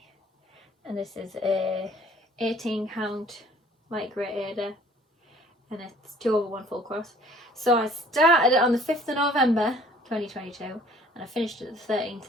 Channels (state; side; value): normal; both; correlation 0.55